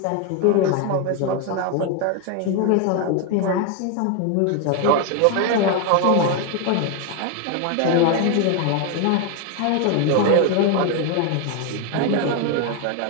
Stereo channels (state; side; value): different; both; correlation 0.01